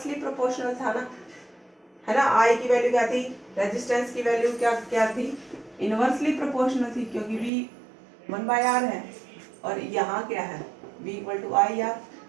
प्रोपोर्शनल था ना, है ना। आई की वैल्यू क्या थी, रेजिस्टेंस की वैल्यू क्या क्या थी इनवर्सली प्रोपोर्शनल थी, क्योंकि V 1/R है और यहाँ क्या है V = IR,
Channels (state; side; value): drops out; left; at 7.5 s